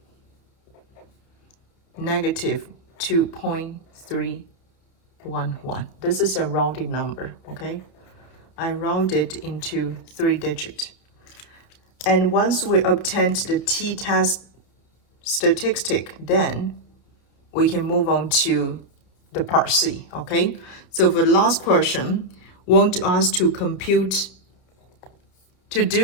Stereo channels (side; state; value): right; late; 31 ms